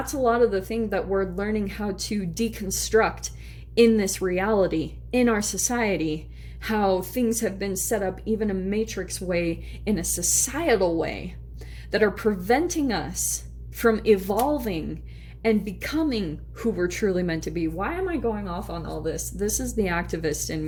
a lot of the thing that we're learning how to deconstruct in this reality, in our society, how things have been set up even a matrix way, in a societal way, that are preventing us from evolving and becoming who we're truly meant to be. Why am I going off on all this? This is the activist in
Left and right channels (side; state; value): both; identical; correlation 1.00